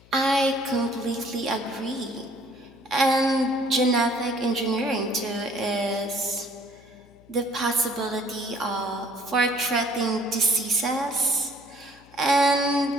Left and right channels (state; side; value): noise; left; hum, 26 dB below the sound